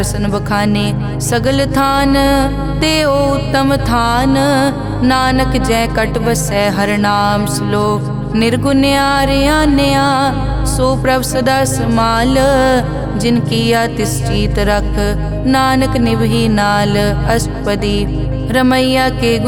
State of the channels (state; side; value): identical; both; correlation 1.00